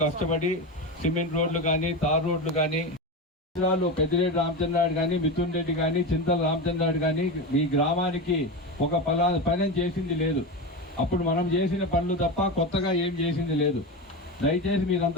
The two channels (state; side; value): normal; both; correlation 0.20